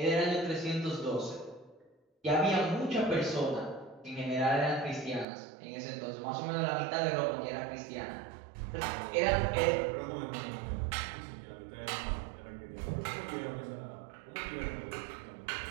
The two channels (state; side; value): drops out; left; at 5.2 s